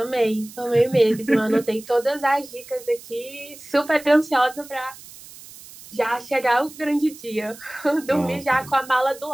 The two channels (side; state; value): right; noise; hiss, 18 dB below the sound